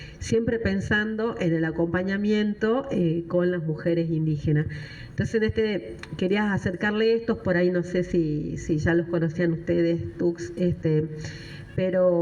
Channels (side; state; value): both; identical; correlation 1.00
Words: Siempre pensando en el acompañamiento con las mujeres indígenas. Entonces, querías acercarle estos, por ahí no sé si ya los conocían ustedes, Tux,